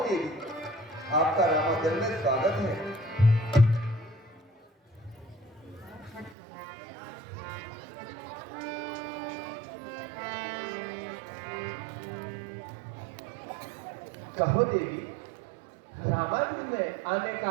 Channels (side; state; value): left; drops out; at 6.4 s